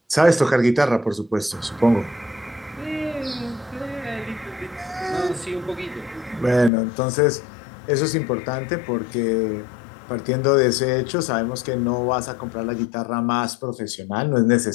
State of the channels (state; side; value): drops out; right; at 6.7 s